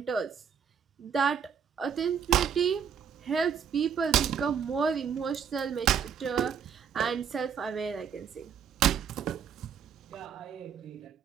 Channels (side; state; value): left; quieter; 7.4 dB